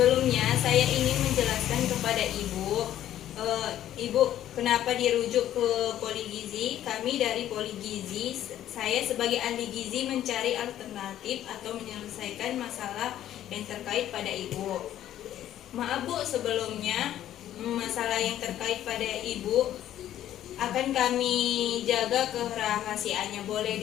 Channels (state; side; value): quieter; right; 12.1 dB